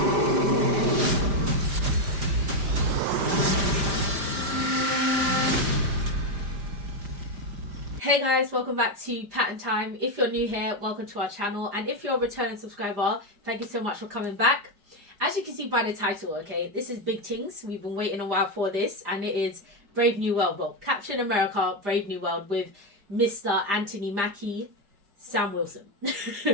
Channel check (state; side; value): late; left; 5.0 ms